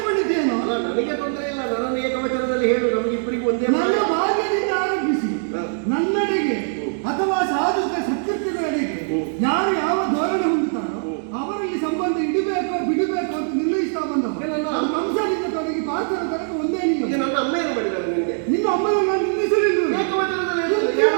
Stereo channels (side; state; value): left; silent; 64 dB below the other